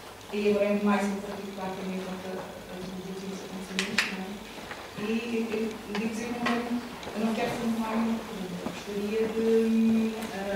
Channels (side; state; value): both; identical; correlation 1.00